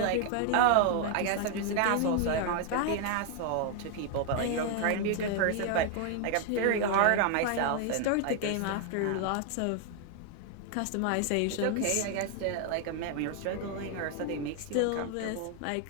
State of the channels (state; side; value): different; both; correlation 0.00